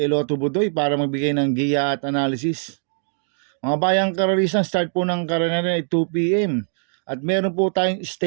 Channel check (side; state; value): left; silent; digital silence